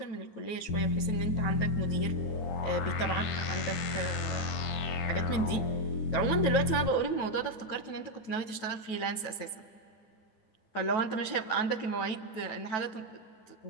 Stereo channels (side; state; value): right; late; 9.2 ms